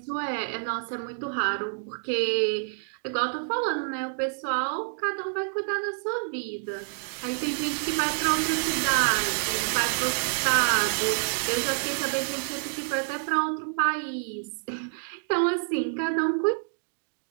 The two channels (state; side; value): silent; left; digital silence